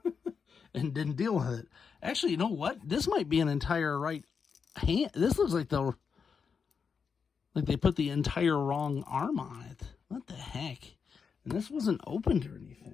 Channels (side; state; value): right; quieter; 6.0 dB